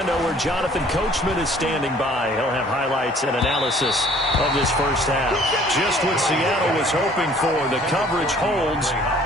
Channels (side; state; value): both; normal; correlation 0.55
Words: where Jonathan Coachman is standing by. He'll have highlights and analysis of this first half. Just what Seattle was hoping for. The coverage holds,